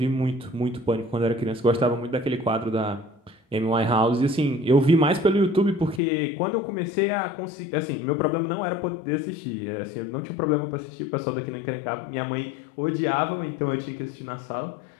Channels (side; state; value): right; drops out; at 6.0 s